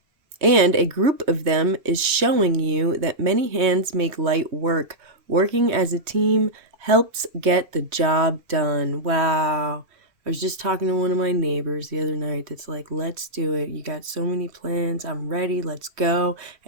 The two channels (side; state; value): left; late; 3.2 ms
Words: and a group of them is showing you that many hands make light work. Working as a team helps get the job done. Wow. I was just talking to one of my neighbors the other night that's like, let's do it. You got so many plans. I'm ready. Let's go.